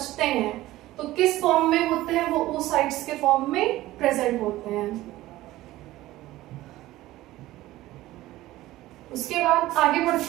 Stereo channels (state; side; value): quieter; left; 16.5 dB